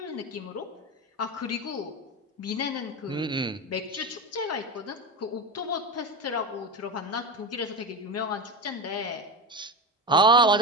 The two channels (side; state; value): both; normal; correlation 0.20